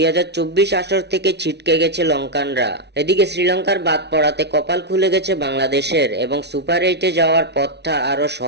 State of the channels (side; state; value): left; late; 0.50 ms